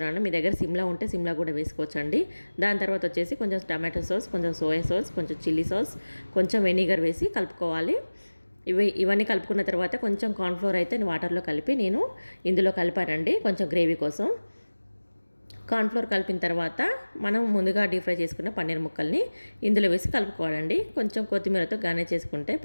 మీ దగ్గర సిమ్లా ఉంటే సిమ్లా కూడా వేసుకోవచ్చండి. దాని తర్వాత వచ్చేసి కొంచెం టమాటో సాస్, కొంచెం సోయా సాస్, కొంచెం చిల్లీ సాస్, కొంచెం వెనిగర్ వేసి కలుపుకోవాలి. ఇవన్నీ కలుపుకున్న తర్వాత కొంచెం కార్న్ఫ్లోర్ అయితే వాటర్లో కలిపి నేను ఇందులో కలిపానండి, కొంచెం గ్రేవీ కోసం. కార్న్ఫ్లోర్ కలిపిన తర్వాత మనం ముందుగా డీప్ ఫ్రై చేసుకున్న పన్నీర్ ముక్కల్ని ఇందులో వేసి కలుపుకోవాలండి. కొంచెం కొత్తిమీరతో గార్నిష్ చేసుకుంటే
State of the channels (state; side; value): inverted; both; correlation -1.00